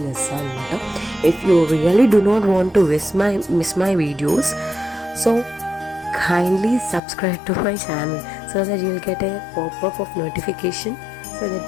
చేస్తాను అనమాట. If you really do not want to miss my videos, so kindly subscribe to my channel so that you will get a pop-up of notification, so that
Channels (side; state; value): right; drops out; at 7.0 s